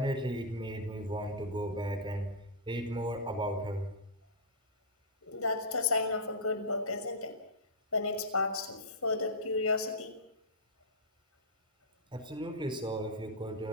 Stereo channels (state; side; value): normal; both; correlation -0.11